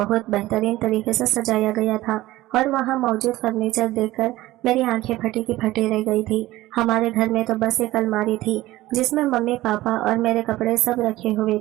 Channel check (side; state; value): left; quieter; 17.0 dB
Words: बेहतरीन तरीके से सजाया गया था और वहाँ मौजूद फर्नीचर देखकर मेरी आंखें फटी की फटी रह गई थी। हमारे घर में तो बस एक अलमारी थी जिसमें मम्मी पापा और मेरे कपड़े सब रखे हुए